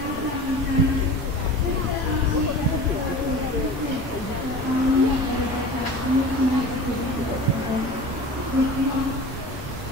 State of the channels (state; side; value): normal; both; correlation 0.36